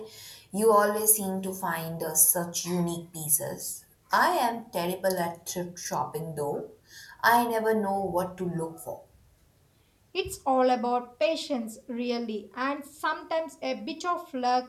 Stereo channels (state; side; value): identical; both; correlation 1.00